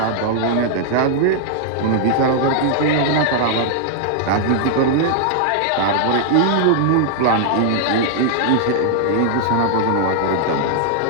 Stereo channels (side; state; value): both; different; correlation -0.01